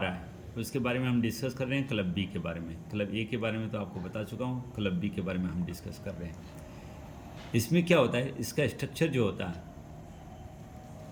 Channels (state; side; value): identical; both; correlation 1.00